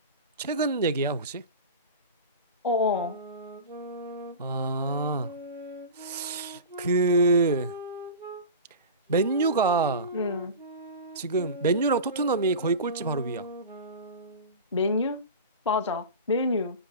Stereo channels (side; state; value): both; inverted; correlation -0.30